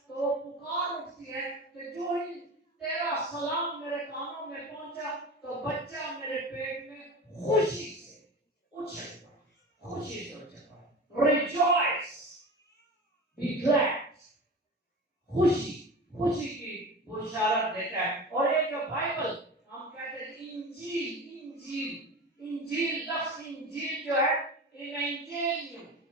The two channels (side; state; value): both; normal; correlation 0.32